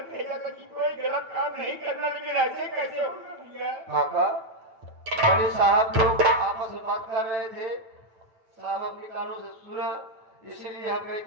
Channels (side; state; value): left; late; 9.0 ms